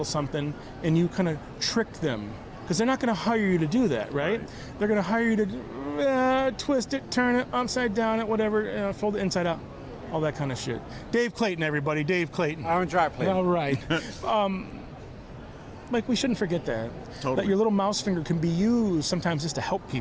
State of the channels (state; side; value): identical; both; correlation 1.00